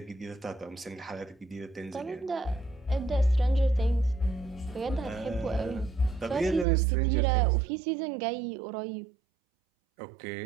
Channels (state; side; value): drops out; left; at 6.7 s